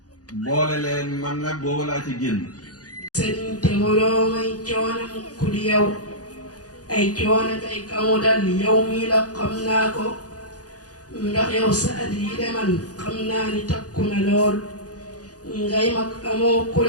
boole leen man nag boobu laa ci génn. sëriñ te waroo may coono mukk di yow ay coono tey kamu dal yow mii la xam naa ko ndax yow sa at yi de man xam naa ni takku na lool ngay mag amoo ku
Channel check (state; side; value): late; right; 0.68 ms